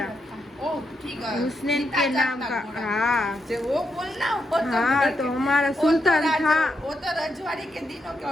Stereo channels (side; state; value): both; normal; correlation 0.82